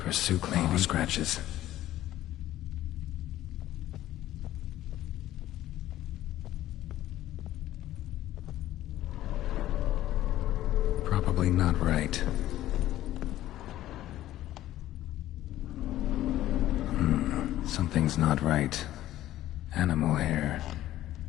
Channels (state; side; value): quieter; right; 14.1 dB